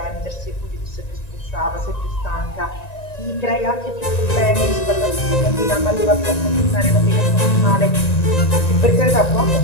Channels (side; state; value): right; late; 1.9 ms